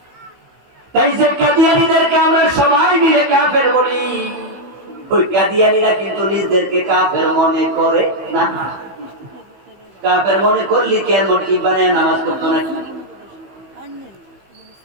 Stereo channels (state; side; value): late; left; 15 ms